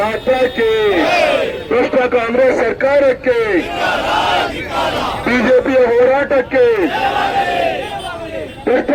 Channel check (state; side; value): identical; both; correlation 1.00